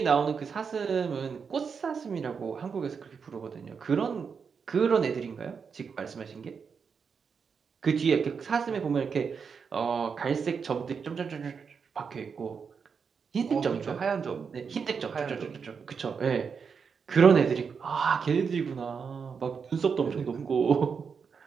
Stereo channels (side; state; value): left; quieter; 6.0 dB